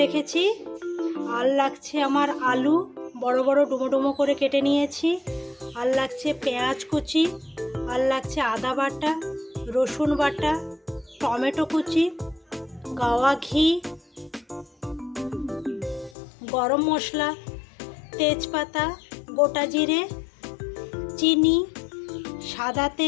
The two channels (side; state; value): right; drops out; at 16.2 s